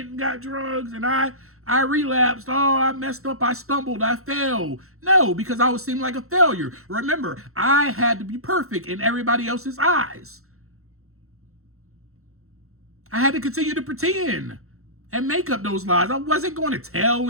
and got drugs and I relapsed. Oh, I messed up. I stumbled. I fell. No, because I was seeming like a failure. Remember, I had to be perfect in everybody else's eyes. I had to continue to pretend and make up those lies. I wasn't going to tell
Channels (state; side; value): late; left; 0.63 ms